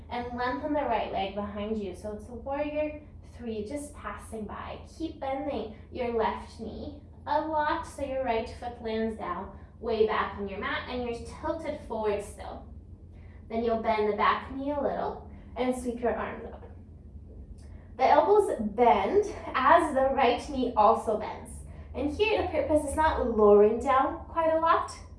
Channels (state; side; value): identical; both; correlation 1.00